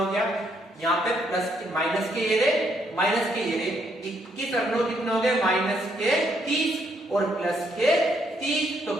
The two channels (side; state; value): both; normal; correlation 0.73